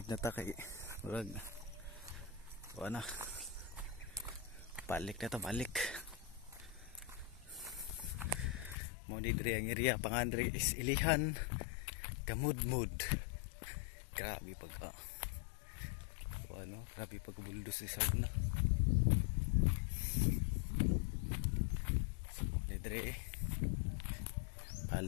na ta kay murag. Wala na. Balik. Mo ni diri ang area pangandre is Ilihan Kamudmud. Grabe pag grabe pag buldos ni sound na. So mo ni diri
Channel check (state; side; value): drops out; right; at 8.8 s